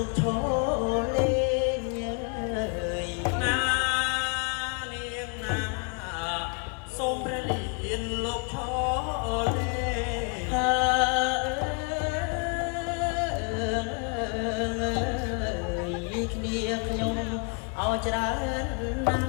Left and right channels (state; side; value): quieter; right; 35.7 dB